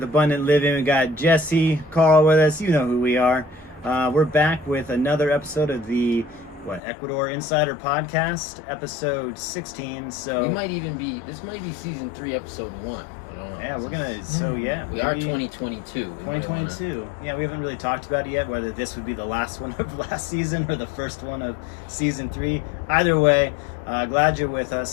Abundant Living. We got Jesse, Carl with us. You know who we are. We're back with another episode of the Ecuador Insider Podcast, episode 16. So this might be season 3, episode 1. I don't know. Yeah, we are 2022. 2022. Yeah, we haven't really talked about it yet, whether this would be the last one of last season or the first one of season 3. Either way, glad you're with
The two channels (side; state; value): right; drops out; at 6.8 s